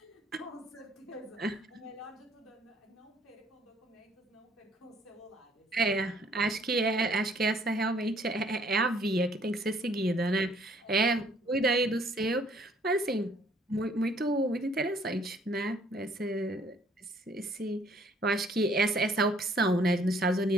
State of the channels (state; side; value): normal; both; correlation 0.62